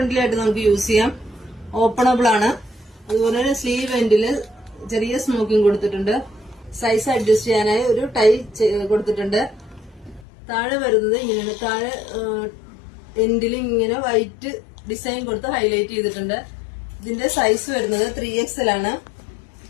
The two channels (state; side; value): drops out; right; at 10.2 s